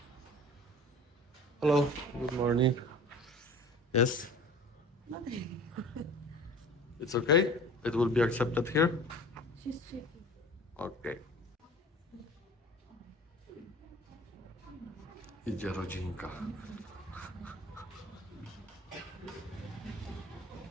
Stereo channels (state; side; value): normal; both; correlation 0.42